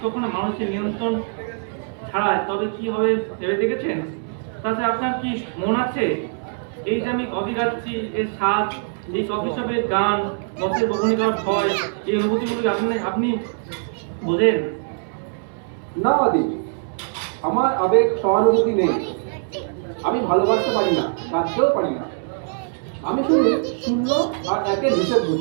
কখনো মানুষের নিয়ন্ত্রণ ছাড়ায়, তবে কি হবে ভেবে দেখেছেন? তাতে আপনার কি মন আছে? এই যে আমি কফি খাচ্ছি, এর স্বাদ, এই কফি শপের গান, বসের বকুনি করার ভয়, এই অনুভূতিগুলো আপনি বোঝেন? না আদি, আমার আবেগ সহানুভূতি নেই। আমি ভালোবাসতে পারি না, কাঁদতেও পারি না। আমি শুধু শূন্য আর একের হিসেব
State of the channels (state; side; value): silent; left; digital silence